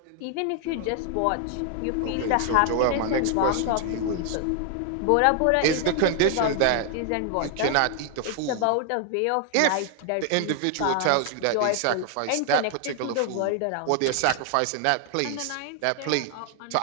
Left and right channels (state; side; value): different; both; correlation 0.00